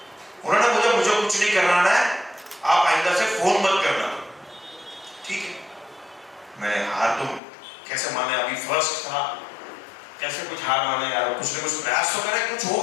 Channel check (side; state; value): right; drops out; at 7.4 s